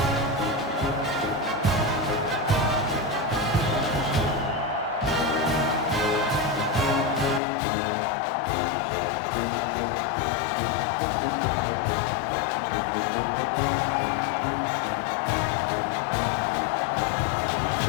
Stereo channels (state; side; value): drops out; right; at 7.4 s